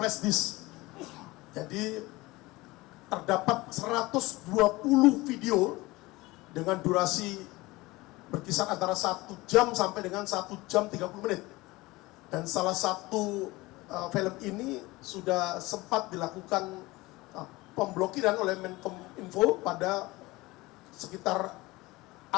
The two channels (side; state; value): right; quieter; 20.9 dB